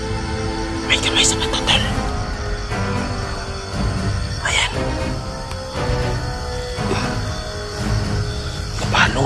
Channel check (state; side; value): identical; both; correlation 1.00